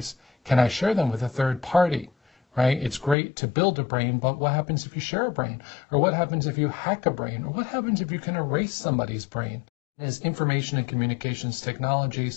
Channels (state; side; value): drops out; right; at 3.2 s